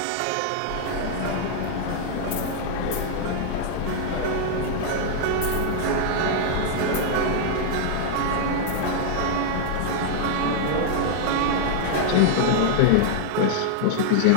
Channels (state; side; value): different; both; correlation -0.01